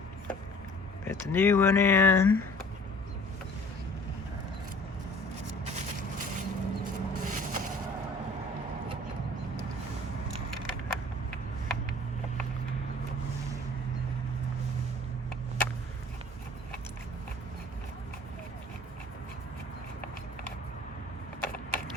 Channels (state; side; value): normal; both; correlation 0.50